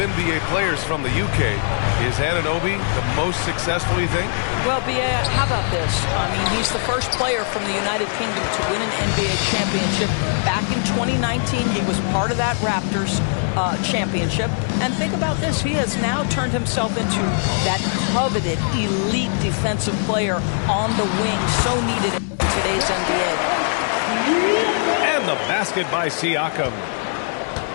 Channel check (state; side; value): silent; right; 65 dB below the other